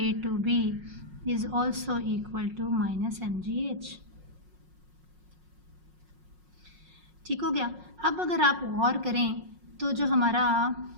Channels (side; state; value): left; late; 5.5 ms